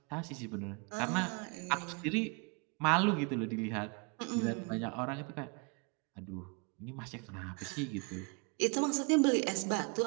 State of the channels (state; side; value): quieter; left; 32.3 dB